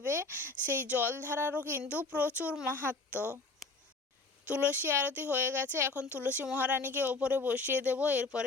সেই জলধারারও কিন্তু প্রচুর মাহাত্ম্য। তুলসী আরতি হয়ে গেছে, এখন তুলসী মহারানীকে ওপরে বসিয়ে দেব,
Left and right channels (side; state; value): right; quieter; 3.5 dB